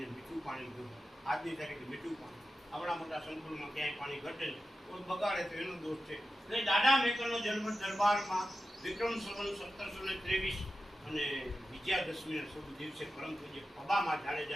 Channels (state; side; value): normal; both; correlation 0.92